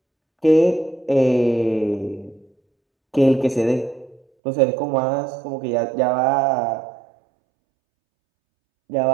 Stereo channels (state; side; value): drops out; left; at 4.2 s